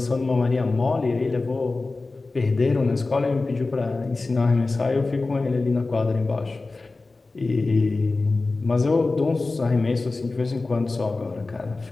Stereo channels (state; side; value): quieter; right; 3.5 dB